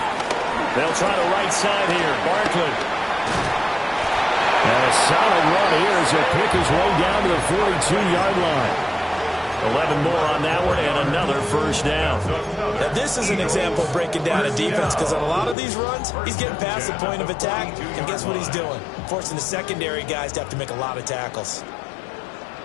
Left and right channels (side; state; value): right; drops out; at 15.6 s